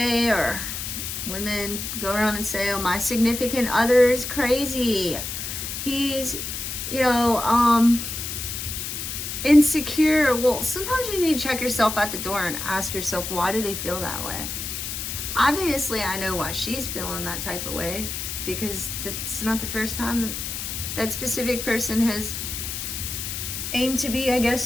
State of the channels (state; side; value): noise; left; hiss, 5 dB below the sound